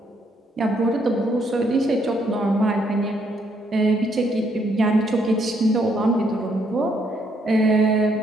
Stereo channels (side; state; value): both; normal; correlation 0.72